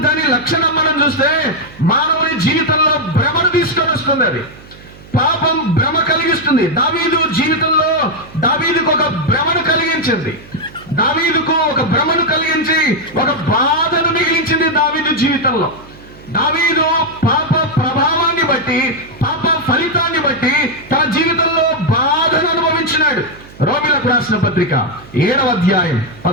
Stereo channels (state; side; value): noise; right; hum, 21 dB below the sound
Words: దాని లక్షణం మనం చూస్తే మానవుని జీవితంలో భ్రమను తీసుకొని వస్తుంది. అది పాపం భ్రమ కలిగిస్తుంది. దావీదు జీవితంలో దావీదుకు ఒక భ్రమను కలిగించింది. దావీదుకు ఒక భ్రమను కలిగించి ఒక బాధను మిగిలించింది దావీదు జీవితంలో. దావీదు పాప ప్రభావాన్ని బట్టి, పాప ఫలితాన్ని బట్టి తన జీవితంలో బాధను అనుభవించినాడు. రోమీలకు రాసిన పత్రిక 7వ అధ్యాయం